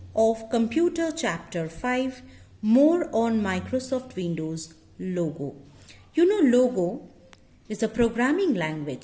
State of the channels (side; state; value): both; identical; correlation 1.00